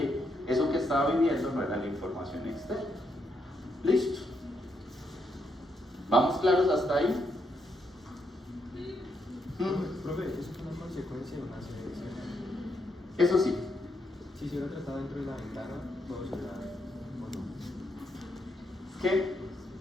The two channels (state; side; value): normal; both; correlation 0.79